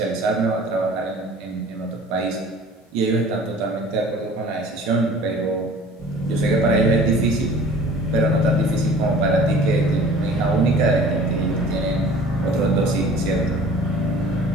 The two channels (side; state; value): both; normal; correlation 0.47